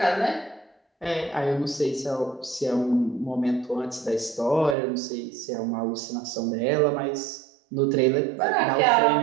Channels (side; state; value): left; drops out; at 4.8 s